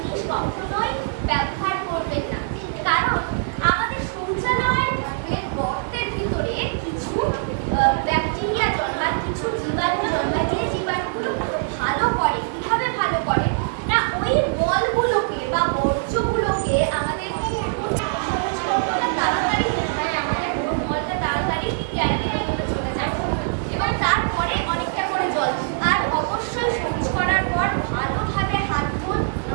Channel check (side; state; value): left; silent; 64 dB below the other